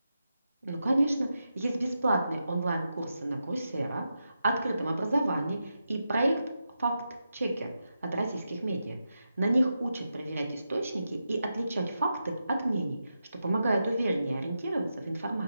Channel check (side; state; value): both; inverted; correlation -0.88